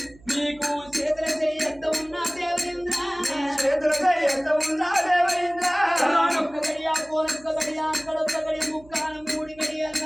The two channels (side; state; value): right; noise; hum, 25 dB below the sound